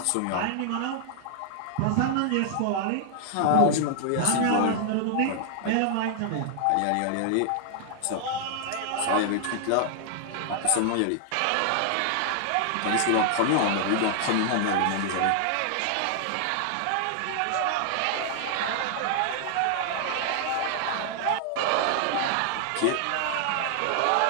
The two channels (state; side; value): different; both; correlation 0.00